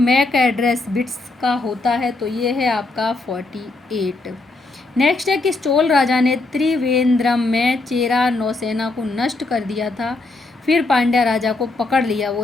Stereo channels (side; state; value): right; quieter; 3.2 dB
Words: एड्रेस बिट्स का होता है, तो ये है आपका 48। नेक्स्ट है कि चोल राजा ने त्रिवेंद्रम में चेरा नौसेना को नष्ट कर दिया था, फिर पांड्या राजा को पकड़ लिया,